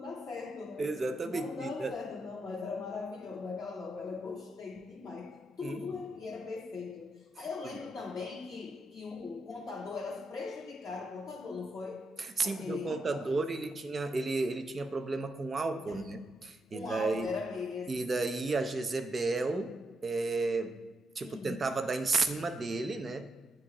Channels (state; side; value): normal; both; correlation 0.83